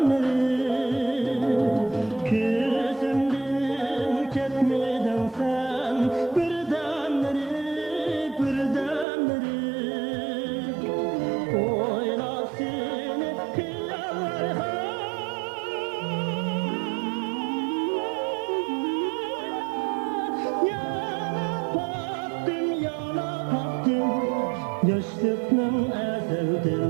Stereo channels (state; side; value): drops out; left; at 9.1 s